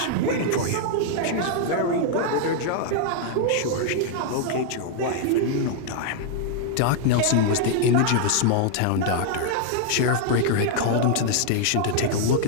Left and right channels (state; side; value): different; both; correlation 0.00